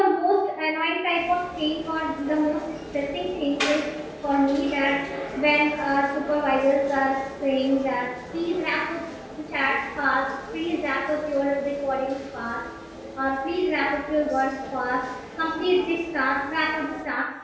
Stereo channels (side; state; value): both; identical; correlation 1.00